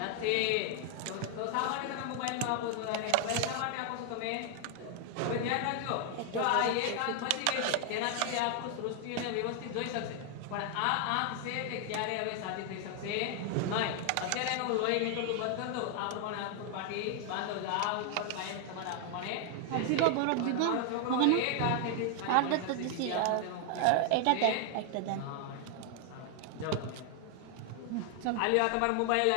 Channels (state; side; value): different; both; correlation 0.00